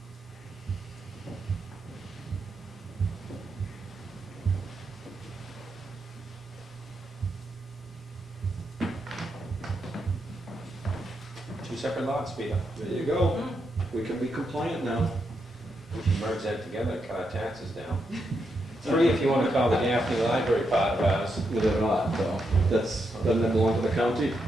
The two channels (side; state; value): both; normal; correlation 0.82